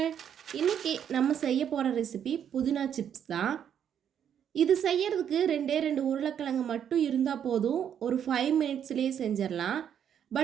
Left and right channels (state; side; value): quieter; left; 8.9 dB